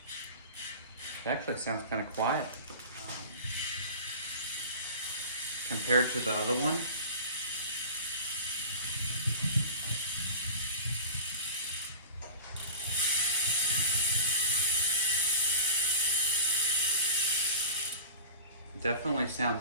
It actually sounds kind of quiet compared to the other one. Definitely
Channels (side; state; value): both; inverted; correlation -0.36